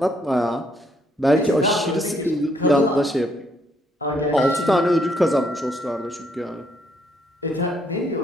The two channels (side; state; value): both; normal; correlation 0.71